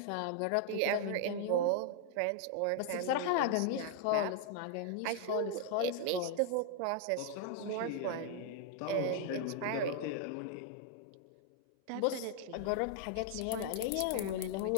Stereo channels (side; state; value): both; different; correlation 0.00